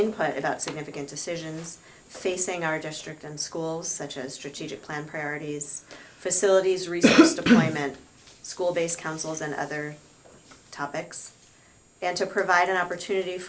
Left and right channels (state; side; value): identical; both; correlation 1.00